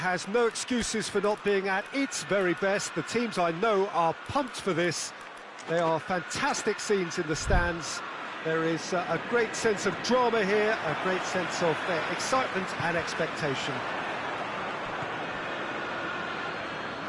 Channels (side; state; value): both; identical; correlation 1.00